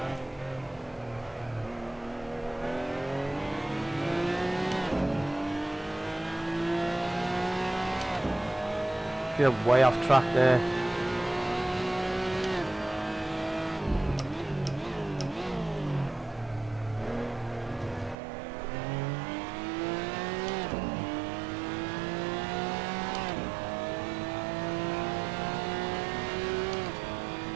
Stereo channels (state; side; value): drops out; left; at 18.2 s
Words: You're way off track there.